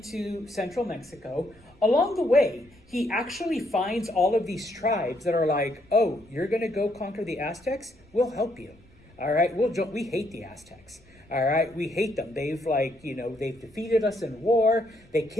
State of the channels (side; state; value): left; noise; rumble, 30 dB below the sound